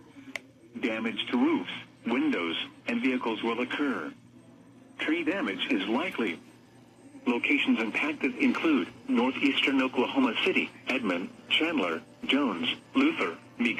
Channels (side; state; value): both; identical; correlation 1.00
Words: Damage to roofs, windows, and vehicles will occur. Tree damage is likely. Locations impacted include northeastern Oklahoma City, Edmond, Chandler, Jones, Luther,